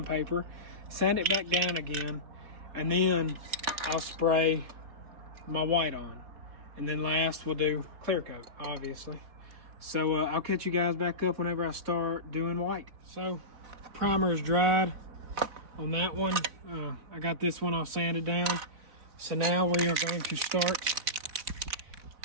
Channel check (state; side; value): late; left; 3.8 ms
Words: sand it back down again, and then I'll spray my white on. And then last we'll do clear coat, obviously. So I'll catch you guys back up whenever I start doing white. So primer is dried on that one. I got this one all sanded down. So now we are going to start